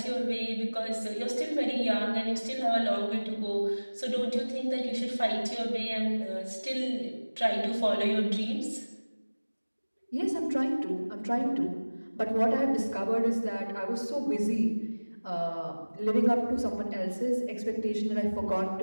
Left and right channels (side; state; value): both; inverted; correlation -1.00